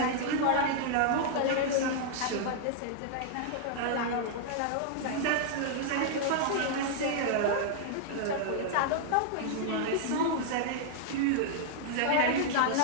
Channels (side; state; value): both; different; correlation -0.01